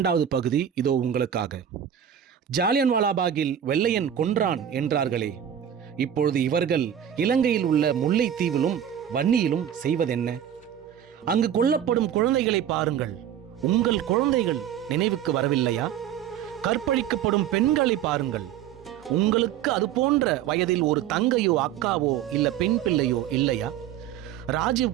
பகுதி இதோ உங்களுக்காக. ஜாலியன்வாலாபாகில் வெள்ளையன் கொன்றான் என்றார்களே, இப்பொழுது இவர்கள் இலங்கையில் உள்ள முல்லைத்தீவிலும் வன்னியிலும் செய்வதென்ன? அங்கு கொல்லப்படும் குழந்தைகளை பாருங்கள். உங்கள் குழந்தைகள் நினைவுக்கு வரவில்லையா? கற்பழிக்கப்படும் பெண்களை பாருங்கள். உங்களுக்கு அது போன்ற வயதில் ஒரு தங்கையோ அக்காவோ இல்ல பெண் பிள்ளையோ இல்லையா? ராஜீவ்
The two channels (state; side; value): quieter; left; 9.8 dB